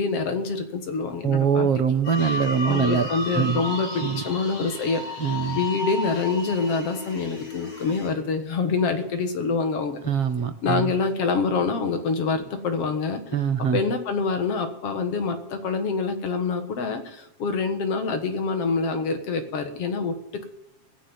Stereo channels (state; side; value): late; right; 7.4 ms